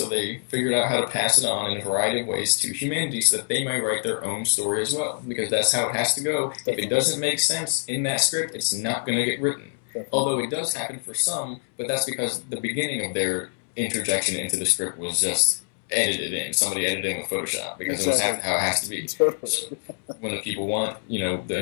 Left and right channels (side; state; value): right; silent; 62 dB below the other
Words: they figured out how to pass it on in a variety of ways to humanity, so that they might write their own story as well, because that's how it has to go. If it doesn't make sense in that script, it's not going to get written. Although it does happen for some, but that's because the beginning of their interjection into the script was just edited in. Somebody edited in with Photoshop because it was how it has to be. So when the people want, the